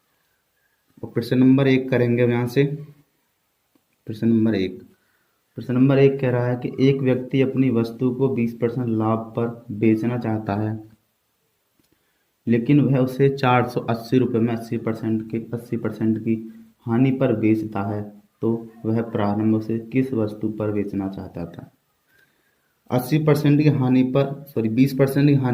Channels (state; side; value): identical; both; correlation 1.00